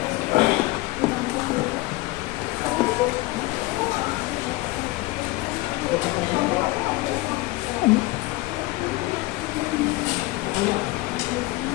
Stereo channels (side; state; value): right; quieter; 20.5 dB